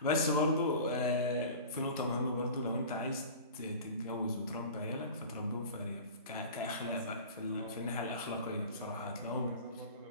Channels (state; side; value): inverted; both; correlation -0.37